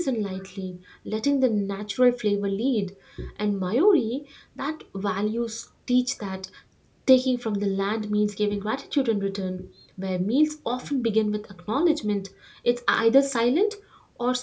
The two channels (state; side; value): identical; both; correlation 1.00